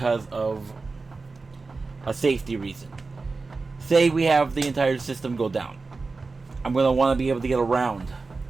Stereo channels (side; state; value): left; quieter; 4.0 dB